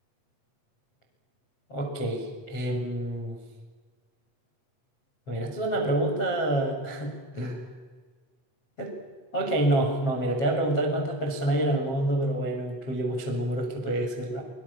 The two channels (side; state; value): right; late; 7.6 ms